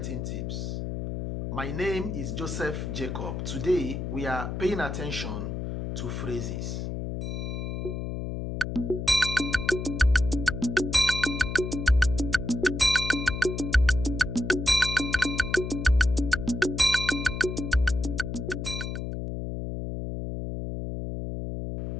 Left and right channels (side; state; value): left; noise; hum, 4 dB below the sound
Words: Tips. My name is Joseph Jacob. Today we are paying attention to phrases.